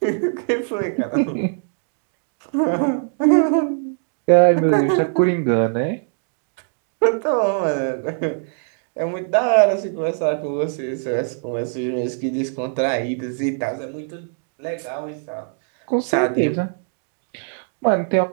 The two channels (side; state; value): left; silent; digital silence